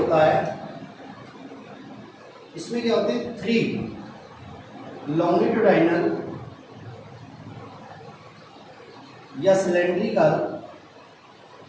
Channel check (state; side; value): identical; both; correlation 1.00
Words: है इसमें क्या होते हैं, 3 लॉन्गिट्यूडाइनल या सिलेंड्रिकल